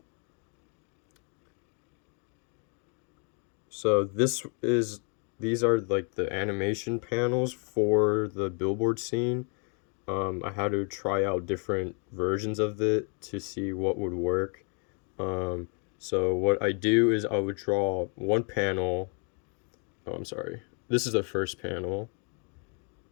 So these are like the animation panels for the billboard scene. I had to try out different versions of it to see what would work. So what I do is I would draw one panel. Oh, I'm sorry. This is the first panel.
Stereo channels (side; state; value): right; quieter; 38.9 dB